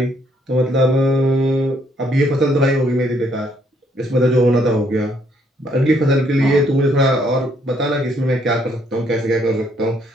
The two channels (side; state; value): both; normal; correlation 0.69